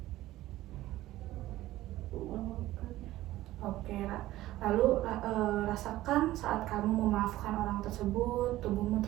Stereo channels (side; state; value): left; quieter; 15.7 dB